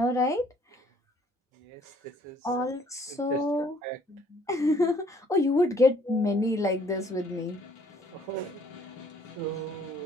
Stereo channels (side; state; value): both; normal; correlation 0.61